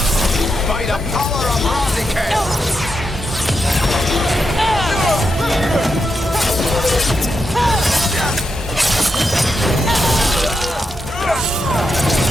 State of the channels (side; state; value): both; normal; correlation 0.84